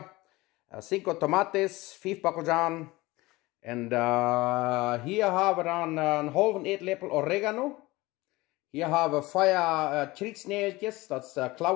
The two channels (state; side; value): quieter; right; 20.7 dB